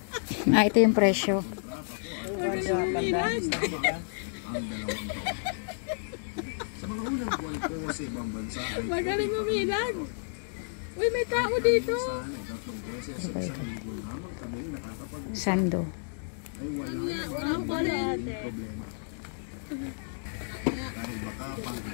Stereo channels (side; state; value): right; silent; 57 dB below the other